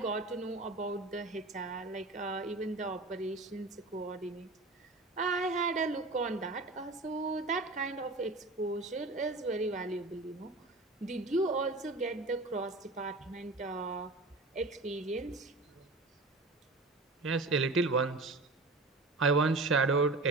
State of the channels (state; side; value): quieter; left; 3.2 dB